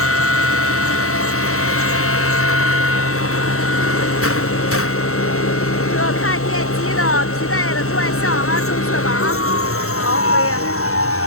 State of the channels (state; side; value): late; right; 0.63 ms